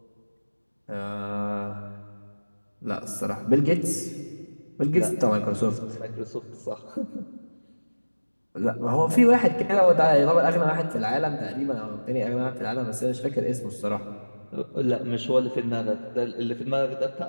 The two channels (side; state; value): both; inverted; correlation -1.00